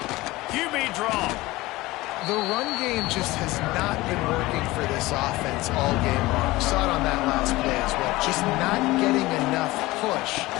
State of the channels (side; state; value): right; quieter; 19.5 dB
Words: QB draw. The run game just has not been working for this offense all game long. We saw it on that last play as well. Just not getting enough push